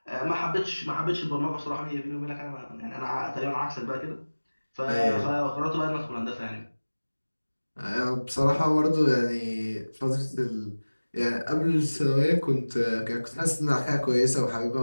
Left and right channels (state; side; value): inverted; both; correlation -1.00